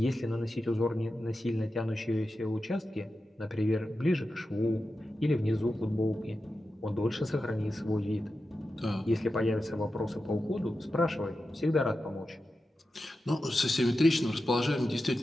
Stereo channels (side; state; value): both; normal; correlation 0.91